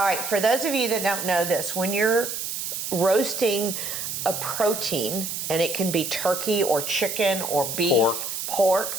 right, for those of you that don't know this, when you're roasting a protein, and it can be turkey or chicken or beef,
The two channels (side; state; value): right; noise; hiss, 4 dB below the sound